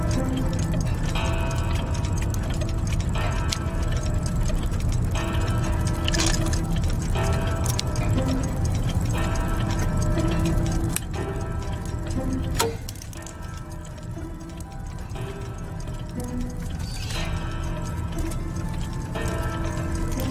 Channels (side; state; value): both; identical; correlation 1.00